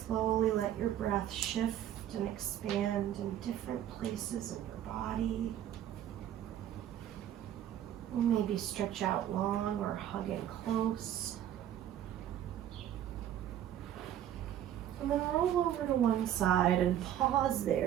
slowly let your breath shift and expand in different places in your body. Maybe stretch out long or hug in close. And then roll over to one side and pause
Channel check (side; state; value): left; quieter; 11.2 dB